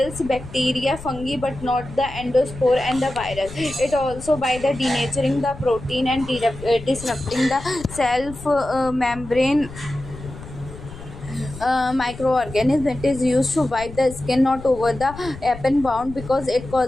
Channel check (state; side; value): noise; left; rumble, 14 dB below the sound